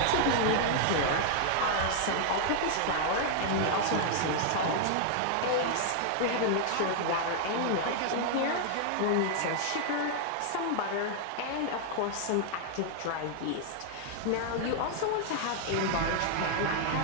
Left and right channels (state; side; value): different; both; correlation 0.00